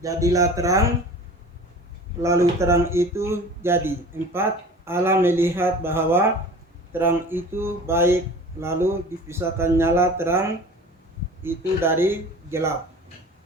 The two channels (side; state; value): both; normal; correlation 0.40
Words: terang, lalu terang itu jadi. 4. Allah melihat bahwa terang itu baik, lalu dipisahkan nyala terang itu dari gelap.